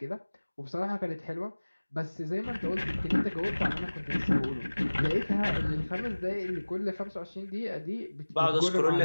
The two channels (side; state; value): both; inverted; correlation -1.00